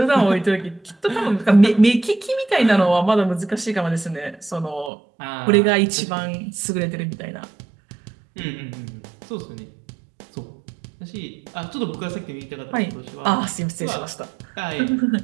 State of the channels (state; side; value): drops out; left; at 4.9 s